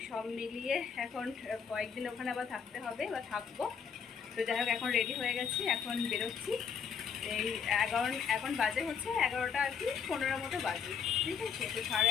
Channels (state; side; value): quieter; right; 6.8 dB